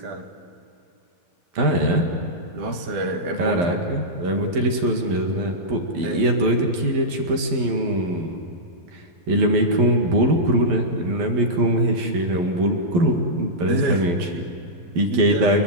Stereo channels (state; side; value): late; left; 12 ms